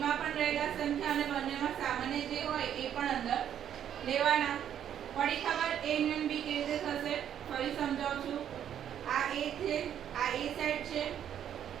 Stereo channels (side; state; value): left; quieter; 9.7 dB